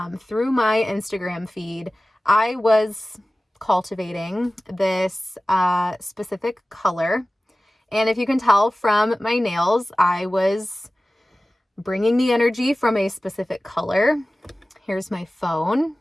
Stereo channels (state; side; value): normal; both; correlation 0.96